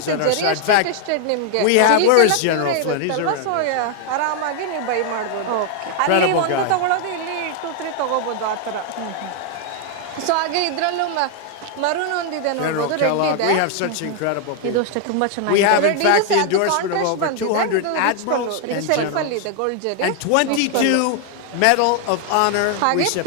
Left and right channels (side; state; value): both; different; correlation 0.00